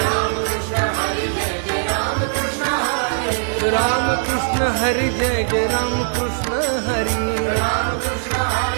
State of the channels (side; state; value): left; silent; 66 dB below the other